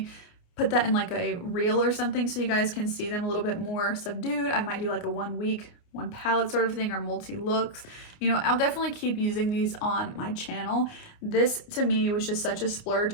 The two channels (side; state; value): right; late; 29 ms